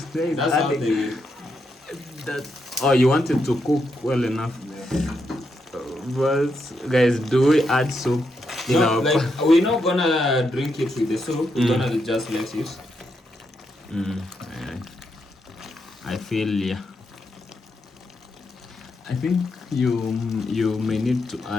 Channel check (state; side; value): normal; both; correlation 0.82